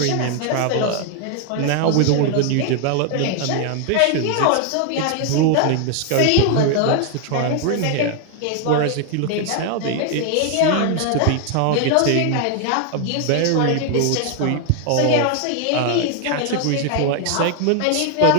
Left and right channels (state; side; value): different; both; correlation 0.00